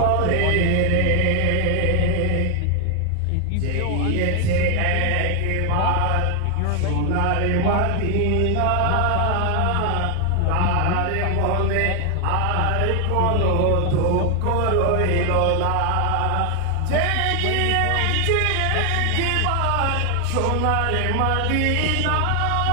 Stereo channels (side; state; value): both; different; correlation 0.00